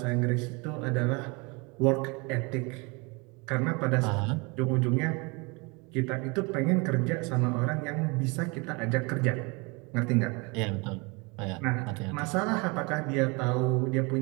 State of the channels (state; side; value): quieter; left; 28.6 dB